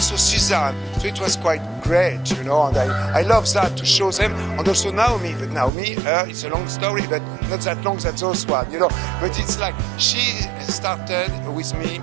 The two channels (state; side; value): drops out; left; at 5.7 s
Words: Suzanne. So it was quite great, you know, and I love that to show them. And also Naomi, but Naomi, it's a long story, but not that long as those one, you know. But it's like she started with me